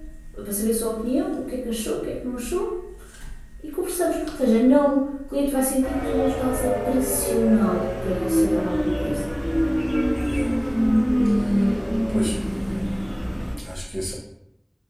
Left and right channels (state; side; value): identical; both; correlation 1.00